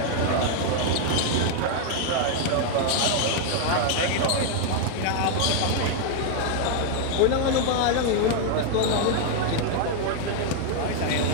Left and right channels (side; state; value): both; different; correlation 0.00